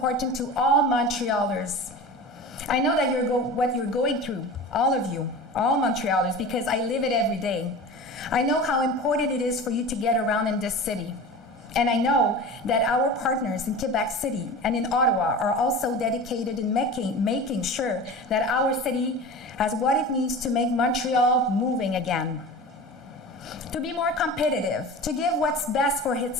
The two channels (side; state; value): both; normal; correlation 0.33